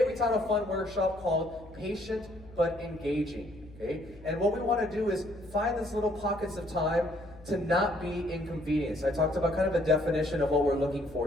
we taught a fun workshop called Patient But Engaging. Okay? And what we want to do is find these little pockets of time to not be inconvenienced. I talked about kind of a definition of what we're looking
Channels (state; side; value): noise; left; hum, 21 dB below the sound